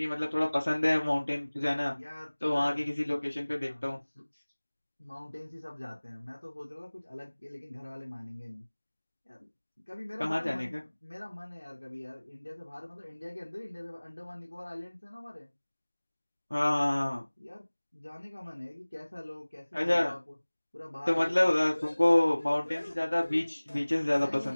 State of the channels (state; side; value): inverted; both; correlation -1.00